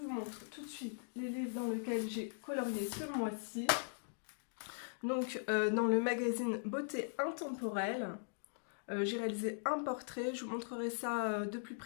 montre tout de suite les livres dans lesquels j'ai colorié ce mois-ci. Donc dans le magazine Beauté Intemporelle. J'ai réalisé un portrait, je vous montrerai ça de plus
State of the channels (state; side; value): silent; right; digital silence